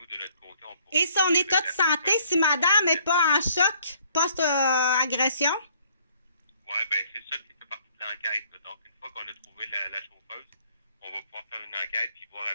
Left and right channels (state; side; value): inverted; both; correlation -0.62